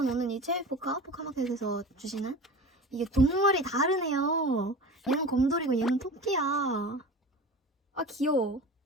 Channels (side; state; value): both; normal; correlation 0.34